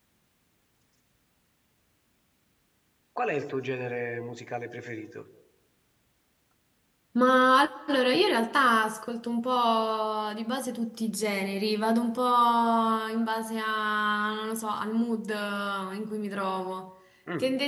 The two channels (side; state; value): both; identical; correlation 1.00